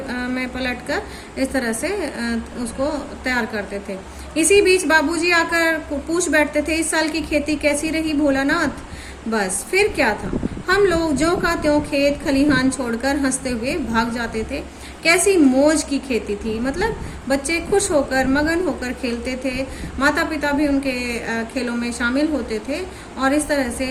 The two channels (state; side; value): identical; both; correlation 1.00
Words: में पलटकर इस तरह से उसको तैयार करते थे। इसी बीच बाबूजी आकर पूछ बैठते थे, इस साल की खेती कैसी रही भोलानाथ? बस फिर क्या था, हम लोग ज्यों का त्यों खेत खलिहान छोड़कर हंसते हुए भाग जाते थे। कैसी मौज की खेती थी, मतलब बच्चे खुश होकर, मगन होकर खेलते थे। माता पिता भी उनके खेलों में शामिल होते थे और इस तरह